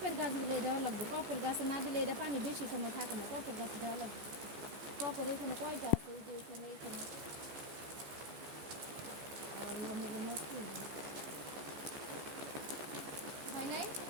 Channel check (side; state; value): left; late; 14 ms